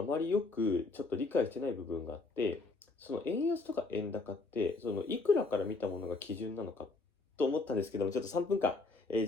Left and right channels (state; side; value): quieter; right; 3.6 dB